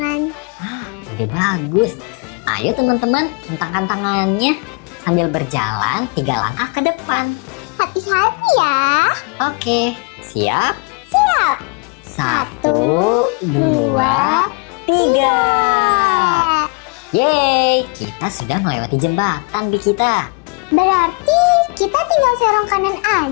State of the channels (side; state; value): right; quieter; 33.8 dB